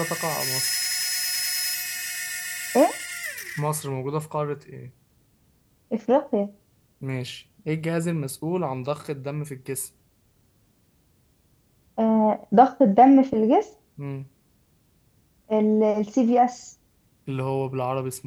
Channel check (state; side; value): identical; both; correlation 1.00